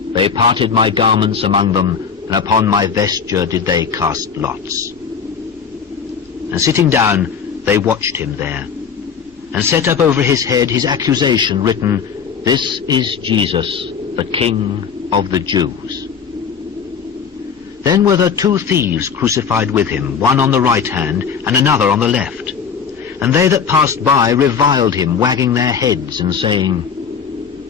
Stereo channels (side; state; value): right; quieter; 6.5 dB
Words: They parted my garments among them, and upon my vesture did they cast lots. And sitting down, they watched him there, and set up over his head his accusation written, This is Jesus, the King of the Jews. Then were there 2 thieves crucified with him, one on the right hand, and another on the left. And they that passed by reviled him, wagging their heads, and saying,